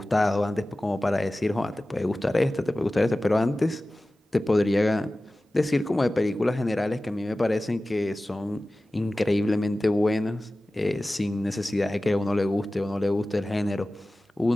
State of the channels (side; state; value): both; normal; correlation 0.96